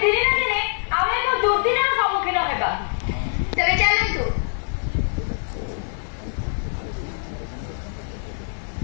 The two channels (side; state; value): right; silent; digital silence